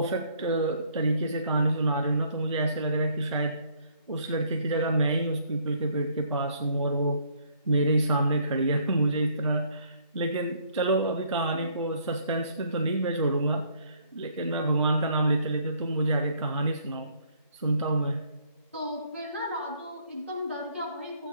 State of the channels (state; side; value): inverted; both; correlation -0.64